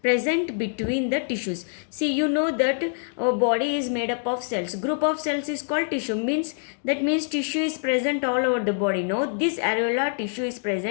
present between the tissues. See, you know that our body is made up of cells. Group of cells is called tissue. That means tissue is present all over the body. No, this areolar tissue is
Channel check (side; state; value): right; silent; digital silence